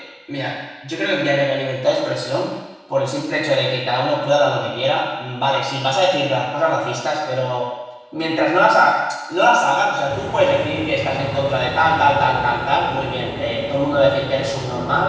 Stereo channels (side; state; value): both; identical; correlation 1.00